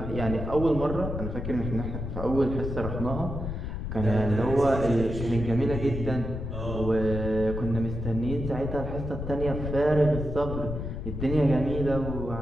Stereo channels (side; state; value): left; noise; rumble, 5 dB below the sound